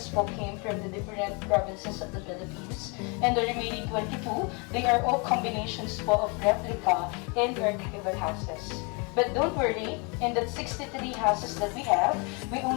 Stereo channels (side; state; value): right; quieter; 31.9 dB